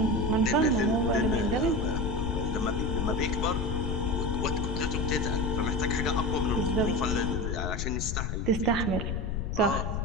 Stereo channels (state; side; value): noise; left; rumble, 2 dB below the sound